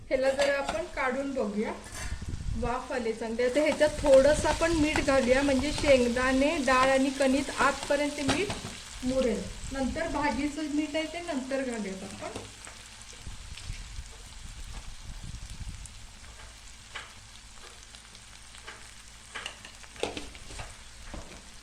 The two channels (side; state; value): both; identical; correlation 1.00